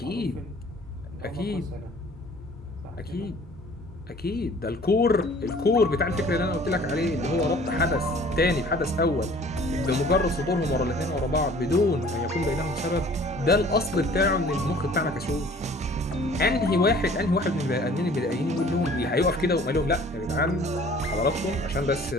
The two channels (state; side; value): normal; both; correlation 0.51